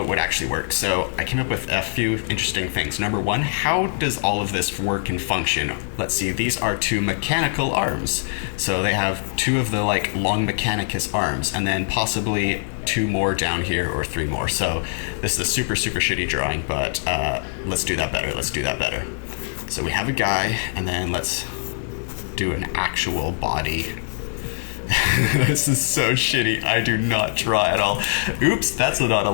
it would actually work. So I came up with a few interesting things. Number 1, how does all of this work and function? Let's see, these are 2 mechanical arms. So they have 2 of the like long Mechanicus arms, and then possibly 2 more down here, or 3 more. So this is a super shitty drawing, but let's do that better. So we have a guy, and then let's do an actual body. This is so shitty. I do not draw at all. Oops, that's not a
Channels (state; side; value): silent; right; 64 dB below the other